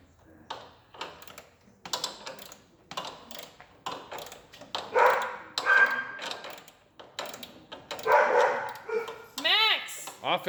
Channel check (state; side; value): identical; both; correlation 1.00